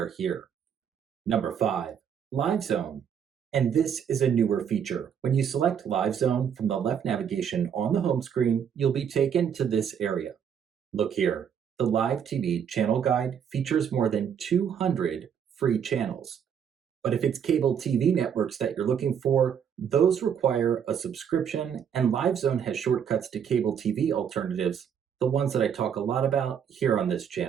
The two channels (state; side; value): quieter; left; 8.0 dB